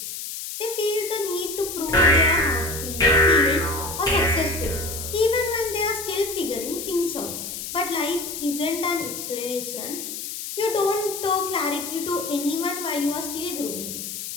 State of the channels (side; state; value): left; noise; hiss, 7 dB below the sound